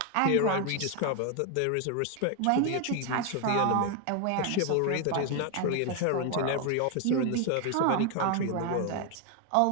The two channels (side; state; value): both; different; correlation 0.01